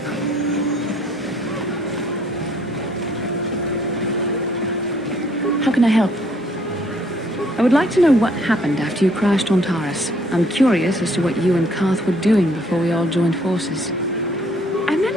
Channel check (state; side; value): normal; both; correlation 0.63